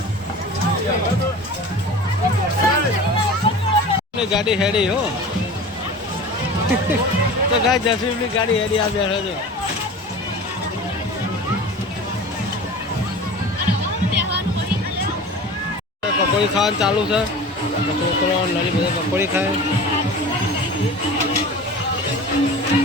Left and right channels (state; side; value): normal; both; correlation 0.36